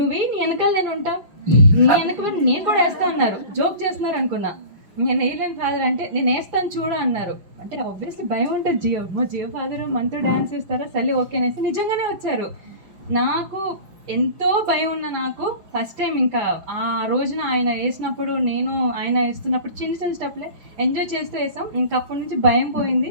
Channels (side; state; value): left; late; 5.3 ms